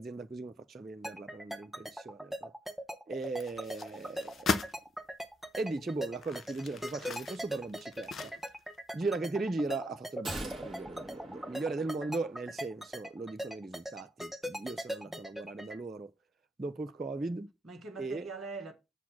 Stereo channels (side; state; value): both; normal; correlation 0.78